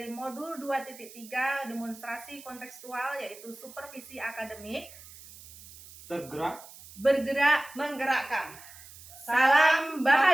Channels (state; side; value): noise; right; hiss, 18 dB below the sound